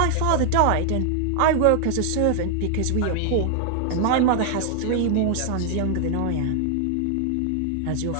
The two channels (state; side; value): different; both; correlation 0.00